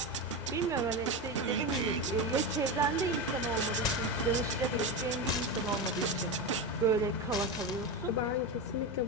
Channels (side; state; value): both; normal; correlation 0.17